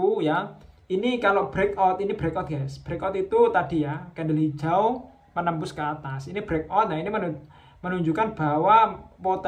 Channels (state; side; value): identical; both; correlation 1.00